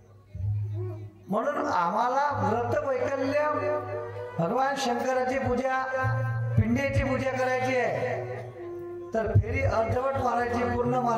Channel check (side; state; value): both; identical; correlation 1.00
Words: म्हणून आम्हाला व्रत वैकल्य, भगवान शंकराची पूजा, पिंडीची पूजा करायची आहे, तर फेरी अर्धवट मारायची, पूर्ण